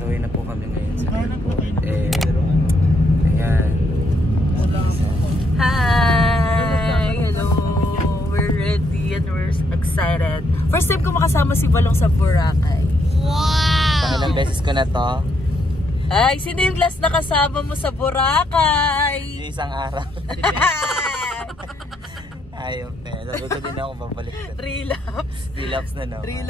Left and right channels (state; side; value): normal; both; correlation 0.75